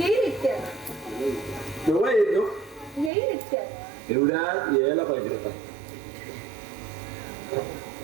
इतक्यात. केव्हा येतो? येईल इतक्यात. एवढ्यात यायला पाहिजे होता.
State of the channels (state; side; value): drops out; left; at 3.1 s